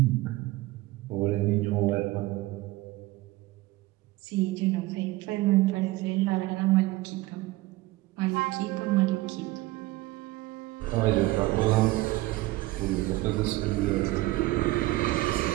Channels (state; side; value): quieter; left; 18.9 dB